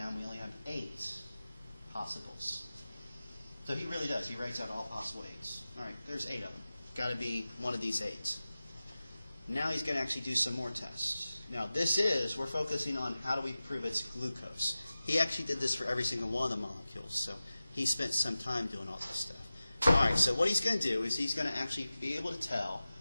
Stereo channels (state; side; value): inverted; both; correlation -0.96